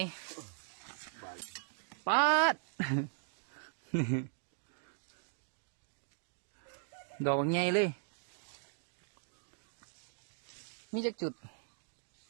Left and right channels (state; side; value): silent; left; digital silence